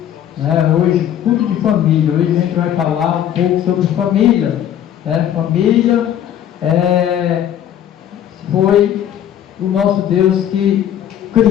né? Hoje, culto de família. Hoje a gente vai falar um pouco sobre família, né? Família foi o nosso Deus que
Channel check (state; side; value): quieter; right; 10.5 dB